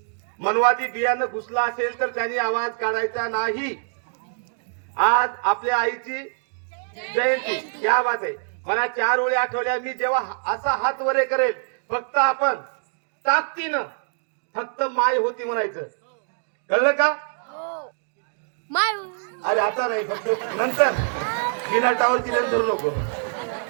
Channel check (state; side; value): silent; left; digital silence